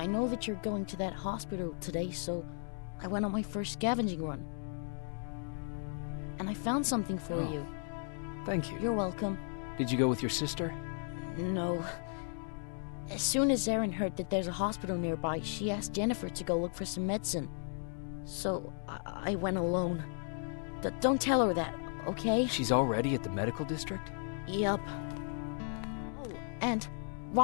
know that you're going to that hospital today, so I went on my first scavenging run. And I found something for you. Thank you. You're welcome. Did you go with your sister? No. As soon as Erin heard that there's a hospital nearby, she asked Jennifer to go look for some medicine. So I went alone. Don't tell her that, okay? She's already at the medical district? Yup. Oh, and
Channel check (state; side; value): silent; right; 54 dB below the other